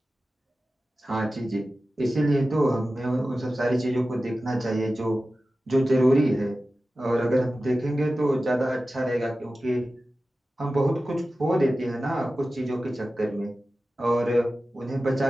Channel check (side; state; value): both; normal; correlation 0.94